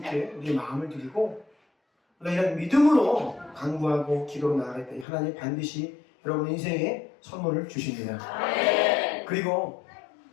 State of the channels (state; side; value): drops out; right; at 5.1 s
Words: 우리의 마음을 드리고 우리가 이런 믿음으로 간구하고 기도로 나아갈 때 하나님 반드시 여러분 인생에 선물을 주십니다. 그리고